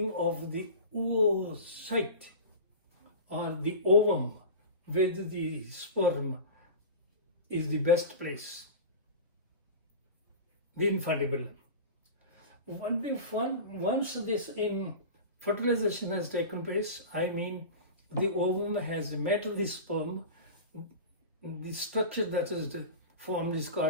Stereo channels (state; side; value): inverted; both; correlation -0.30